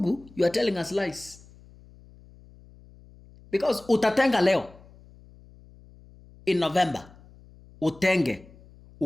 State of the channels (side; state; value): left; noise; hum, 24 dB below the sound